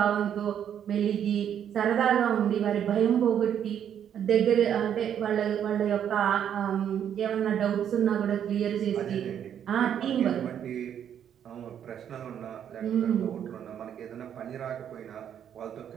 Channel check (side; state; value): left; quieter; 9.2 dB